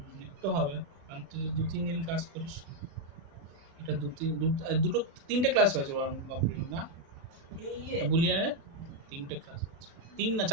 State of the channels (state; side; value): late; left; 36 ms